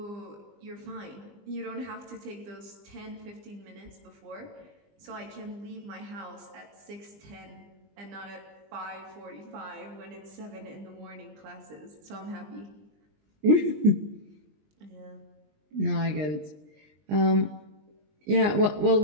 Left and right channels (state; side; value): late; left; 20 ms